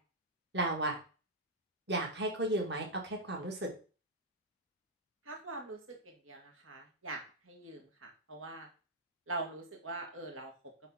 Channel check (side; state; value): both; normal; correlation -0.06